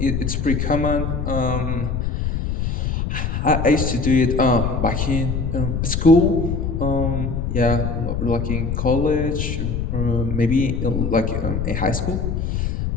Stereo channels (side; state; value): left; noise; rumble, 1 dB below the sound